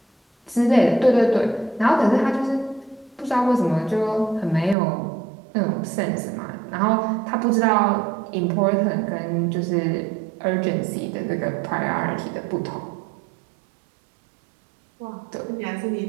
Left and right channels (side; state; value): left; drops out; at 4.8 s